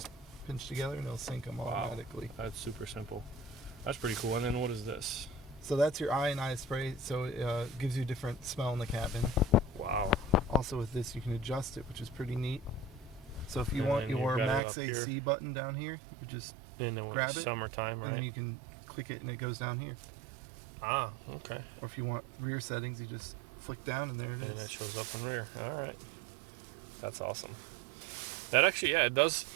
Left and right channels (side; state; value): left; drops out; at 14.6 s